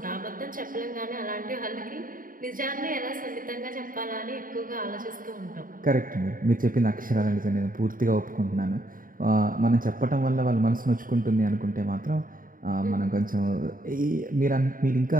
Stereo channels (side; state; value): left; late; 0.40 ms